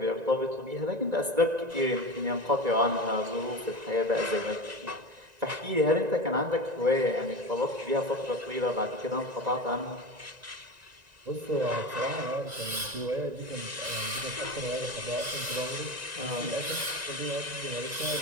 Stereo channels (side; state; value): left; late; 1.9 ms